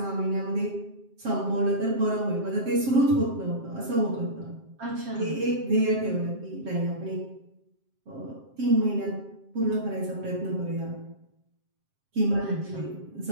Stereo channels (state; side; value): late; left; 7.5 ms